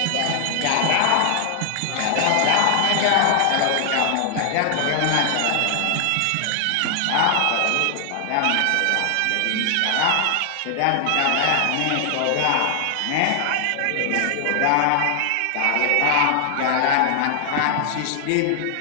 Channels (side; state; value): both; different; correlation 0.00